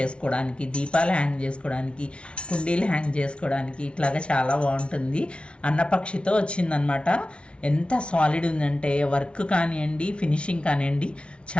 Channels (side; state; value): right; late; 0.059 ms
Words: దీపాలు హ్యాంగ్ చేసుకోవడానికి, కుండీలు హ్యాంగ్ చేసుకోవడానికి ఇట్లాగా చాలా బాగుంటుంది. అన్నపక్షితో వచ్చిందనమాట. ఎంత సాలిడ్ ఉందంటే వర్క్ కానివ్వండి, ఫినిషింగ్ కానివ్వండి,